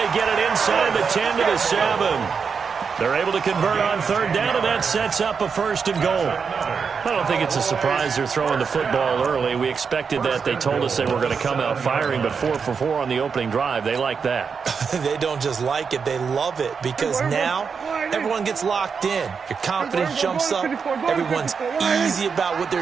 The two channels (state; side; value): quieter; left; 5.9 dB